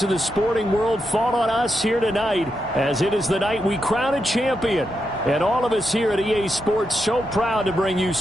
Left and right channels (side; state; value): both; normal; correlation 0.85